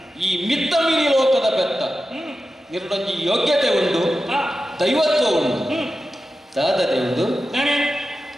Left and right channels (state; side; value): normal; both; correlation 0.92